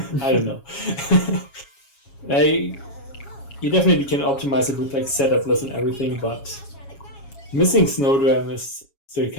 I don't know. You definitely can optimize it with like setup less and everything, but missing Snow Dram is still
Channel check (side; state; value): right; late; 7.3 ms